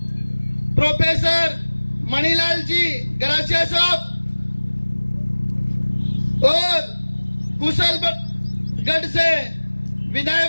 प्रोफेसर मणिलाल जी गरासिया साहब और कुशलगढ़ से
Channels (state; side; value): inverted; both; correlation -1.00